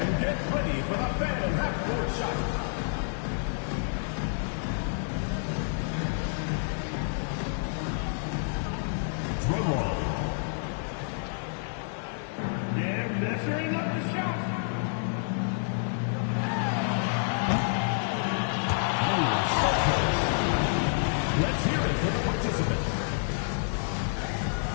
get ready for the fan half-court shot. Drum roll. And measuring up the shot. Let's hear it for the participants.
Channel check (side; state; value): right; silent; 59 dB below the other